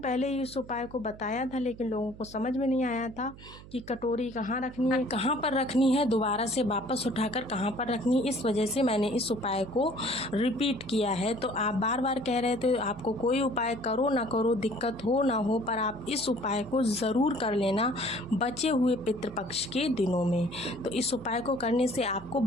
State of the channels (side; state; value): right; noise; hum, 18 dB below the sound